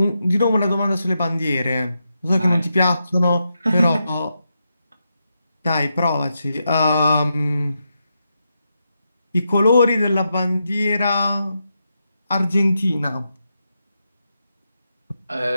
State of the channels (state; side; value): inverted; both; correlation -0.85